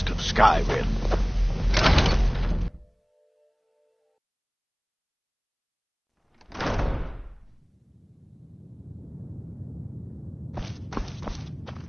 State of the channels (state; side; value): identical; both; correlation 1.00